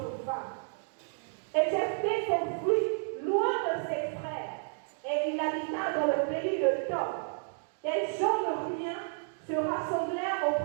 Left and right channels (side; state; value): left; silent; digital silence